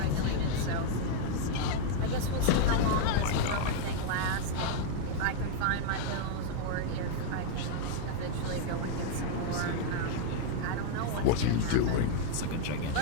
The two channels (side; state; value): both; different; correlation 0.00